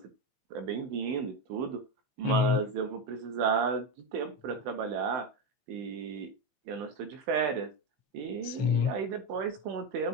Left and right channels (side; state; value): left; late; 16 ms